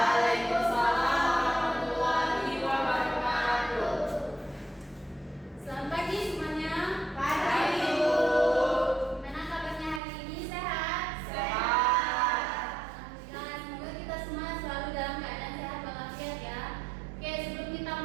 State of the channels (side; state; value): left; drops out; at 10.0 s